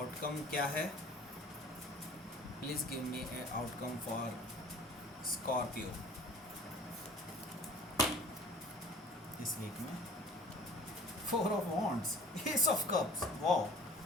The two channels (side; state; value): both; normal; correlation 0.46